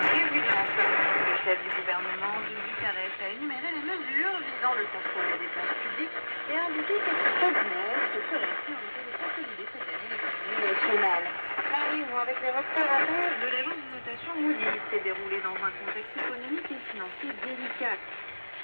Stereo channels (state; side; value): inverted; both; correlation -1.00